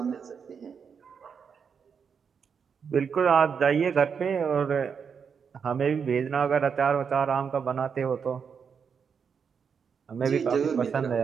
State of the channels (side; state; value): left; quieter; 6.5 dB